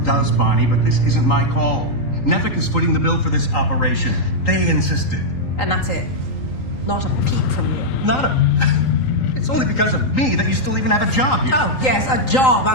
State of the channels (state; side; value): late; right; 3.8 ms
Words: Bonnie, but this isn't my call. Nevik is footing the bill for this operation. They insisted. And that's it. Not a peep from you. Not a... It's only because of me that you still even have a job here. Oh, yes, a job